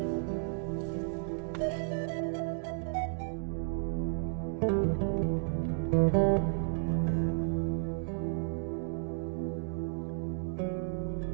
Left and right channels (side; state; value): left; silent; digital silence